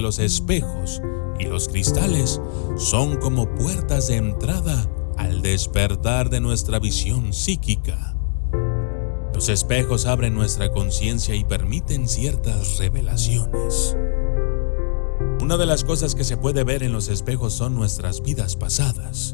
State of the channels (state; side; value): silent; right; digital silence